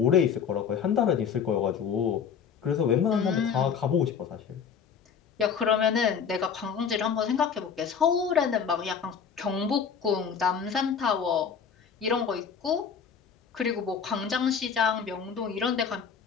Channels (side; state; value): right; quieter; 6.8 dB